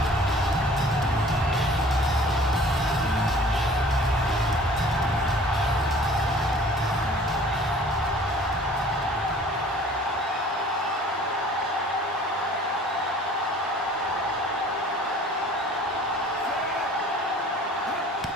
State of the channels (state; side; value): normal; both; correlation 0.50